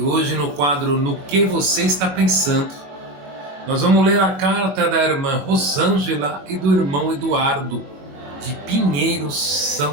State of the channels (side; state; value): left; late; 22 ms